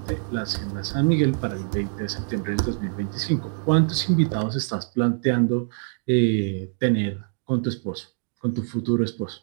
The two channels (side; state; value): left; silent; digital silence